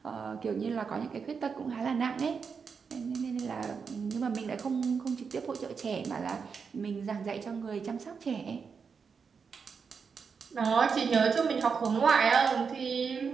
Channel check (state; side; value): quieter; left; 5.8 dB